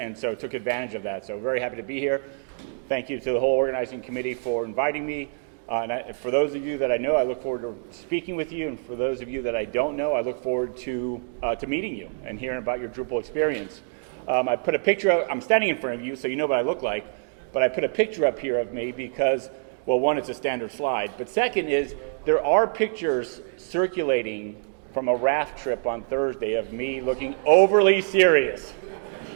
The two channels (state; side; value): silent; left; digital silence